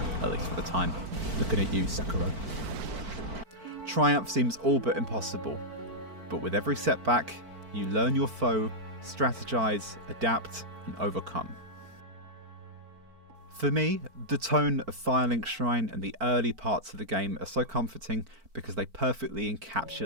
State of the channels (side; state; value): left; late; 4.5 ms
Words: At least for the time. Looking at you, Sekiro. Triumph seems all but impossible, but with every setback, you learn your foe, strategize, adapt, and overcome. For me, the tone of Firelink Shrine and the early parts of the game are so comforting because they perfectly